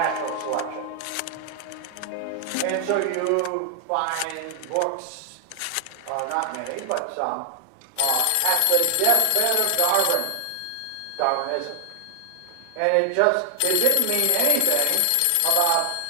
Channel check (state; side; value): different; both; correlation 0.00